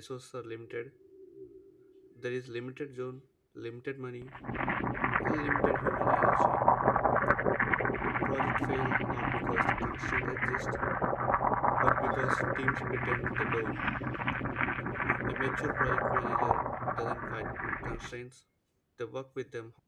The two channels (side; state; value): both; identical; correlation 1.00